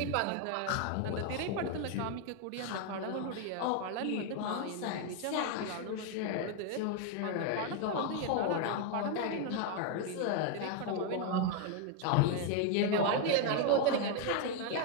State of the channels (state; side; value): different; both; correlation 0.01